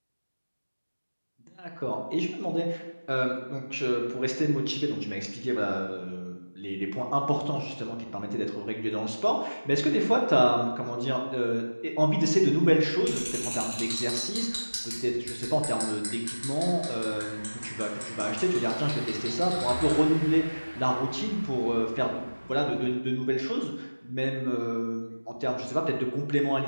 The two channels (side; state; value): both; inverted; correlation -1.00